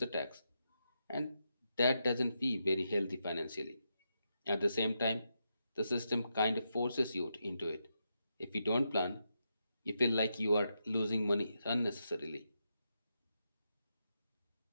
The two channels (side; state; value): both; inverted; correlation -0.84